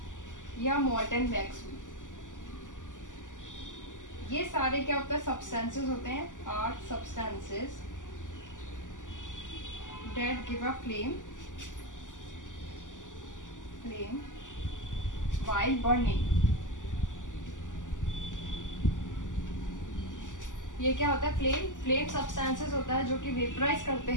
या मॉल्टन वैक्स हुई, ये सारे क्या होता है, सब्सटेंसेस होते हैं, are substances that give a flame while burning। ये क्या होता है, फ्लेम सब्सटेंसेस होता है जो कि वेपराइज करते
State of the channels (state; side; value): late; right; 0.87 ms